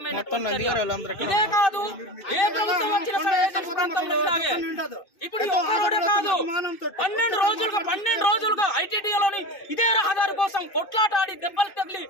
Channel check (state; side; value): late; right; 2.6 ms